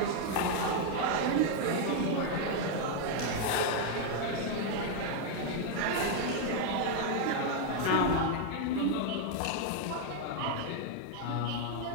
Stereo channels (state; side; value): different; both; correlation 0.00